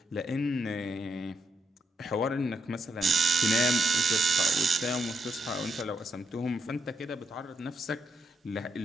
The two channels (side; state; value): both; normal; correlation 0.80